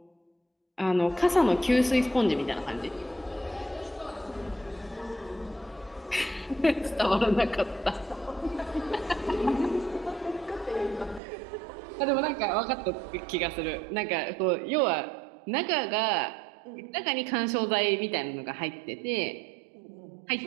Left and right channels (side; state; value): left; drops out; at 11.2 s